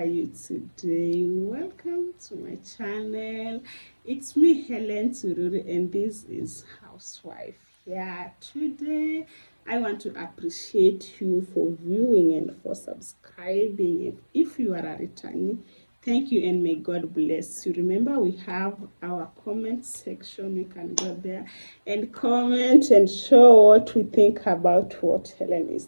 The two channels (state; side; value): inverted; both; correlation -1.00